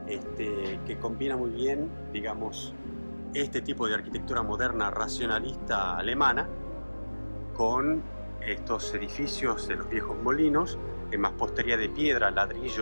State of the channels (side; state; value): both; inverted; correlation -1.00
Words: que combina muy bien, digamos, este tipo de arquitectura moderna racionalista alemana con estos edificios de los viejos molinos en mampostería de piedra,